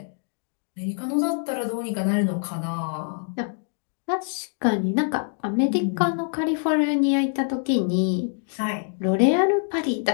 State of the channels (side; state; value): right; silent; 56 dB below the other